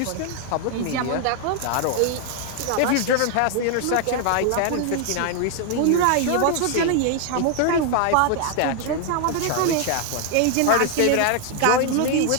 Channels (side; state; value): both; different; correlation 0.00